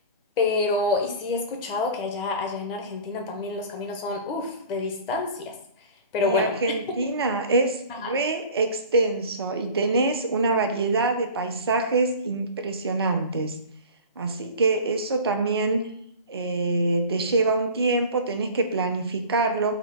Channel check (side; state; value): both; inverted; correlation -0.40